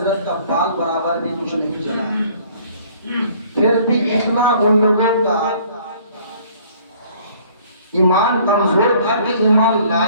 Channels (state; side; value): inverted; both; correlation -0.56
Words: کا بال برابر بھی کچھ نہیں چلا. پھر بھی اتنا ان لوگوں کا ایمان کمزور تھا کہ ایمان